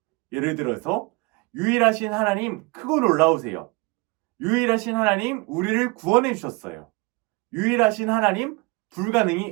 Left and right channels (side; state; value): left; quieter; 26.3 dB